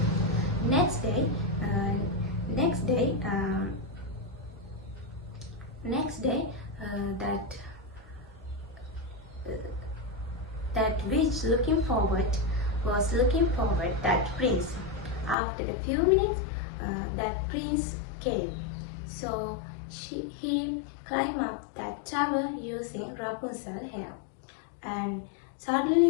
Next day, that witch was looking forward that prince. After a few minutes, that prince came. So he climbed up that tower using Rapunzel's hair, and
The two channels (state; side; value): drops out; right; at 15.4 s